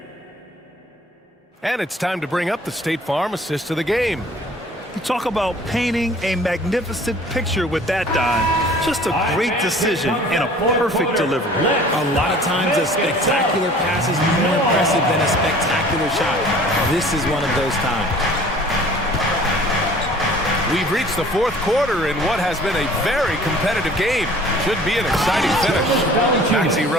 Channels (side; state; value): both; normal; correlation 0.50